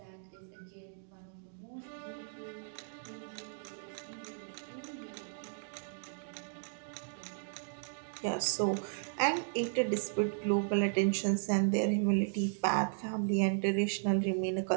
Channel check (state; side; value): silent; left; digital silence